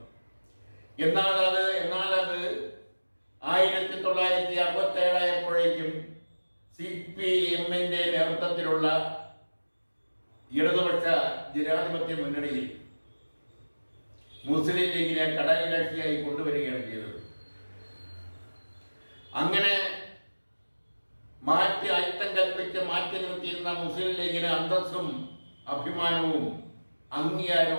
എന്നാൽ അത് 1967 ആയപ്പോഴേക്കും CPM-ന്റെ നേതൃത്വത്തിലുള്ള ഇടതുപക്ഷ ജനാധിപത്യ മുന്നണിയിൽ മുസ്ലിം ലീഗിനെ ഘടകകക്ഷിയായി കൊണ്ടുവരികയാണ് ചെയ്തത്. അങ്ങനെ അയിത്തം കൽപ്പിച്ച് മാറ്റി നിർത്തിയിരുന്ന മുസ്ലിം ലീഗിന് അന്തസ്സും അഭിമാനവും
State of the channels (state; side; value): inverted; both; correlation -1.00